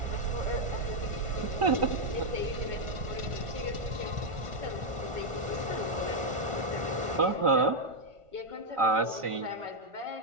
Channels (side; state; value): left; late; 1.5 ms